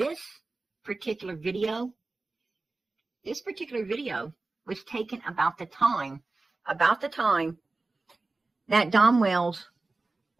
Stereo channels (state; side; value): quieter; left; 3.4 dB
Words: particular video was taken about the time that Don Wells